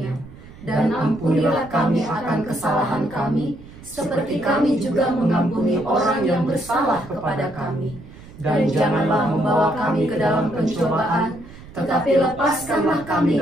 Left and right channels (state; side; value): noise; right; rumble, 18 dB below the sound